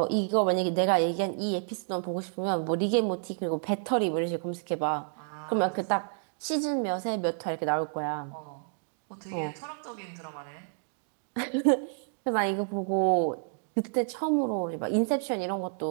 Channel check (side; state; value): left; silent; digital silence